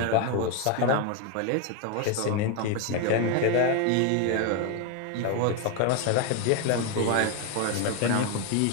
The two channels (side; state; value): both; different; correlation 0.01